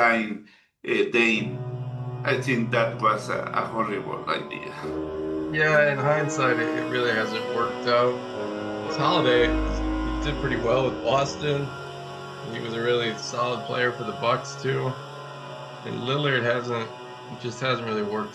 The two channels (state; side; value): identical; both; correlation 1.00